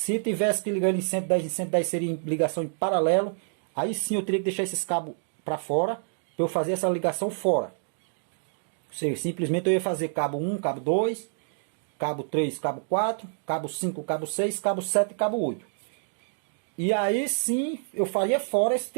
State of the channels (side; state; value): left; silent; digital silence